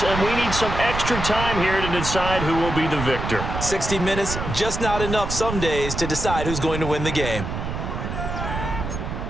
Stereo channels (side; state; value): right; noise; rumble, 5 dB below the sound